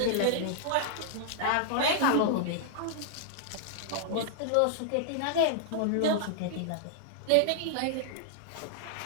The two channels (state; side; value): different; both; correlation -0.01